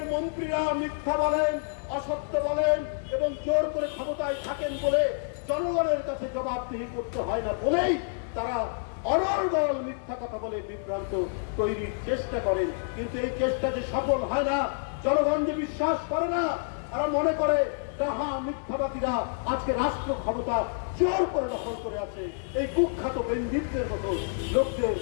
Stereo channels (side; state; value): right; silent; 59 dB below the other